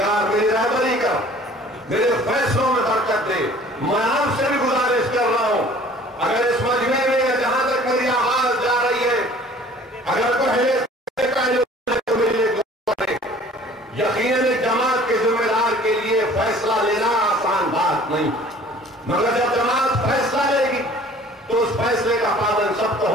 मेरी रहबरी कर, मेरे फैसलों में बरकत दे। मैं आपसे भी गुजारिश कर रहा हूं, अगर इस मजमे में जहां तक मेरी आवाज जा रही है, अगर पहले तो मेरे यकीनन एक जमात के जिम्मेदार के लिए फैसला लेना आसान बात नहीं, मगर जब जमात फैसला लेगी तो उस फैसले का पालन सबको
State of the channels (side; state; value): both; normal; correlation 0.50